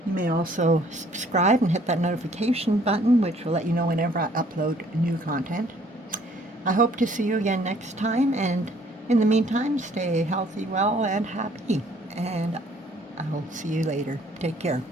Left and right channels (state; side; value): normal; both; correlation 0.60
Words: You may also subscribe and hit that notification button, which will let you know whenever I upload new content. I hope to see you again next time, and in the meantime, stay healthy, well, and happy. And I'll see you later. Take care.